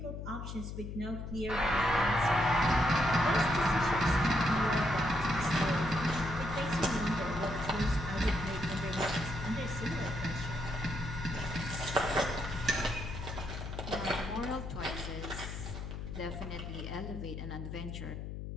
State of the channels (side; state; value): left; noise; hum, 7 dB below the sound